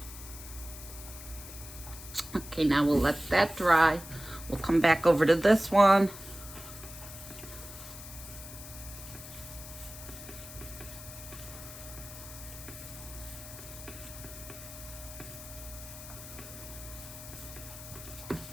Okay, now we'll let that dry. We'll come back over to this one.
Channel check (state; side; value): noise; left; hiss, 13 dB below the sound